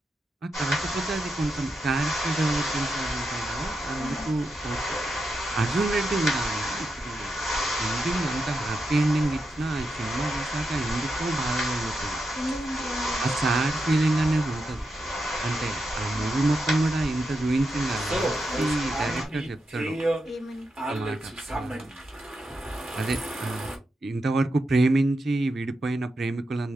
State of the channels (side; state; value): both; normal; correlation 0.86